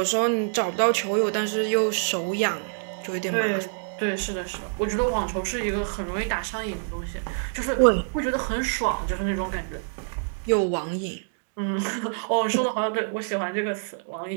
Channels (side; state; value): left; silent; digital silence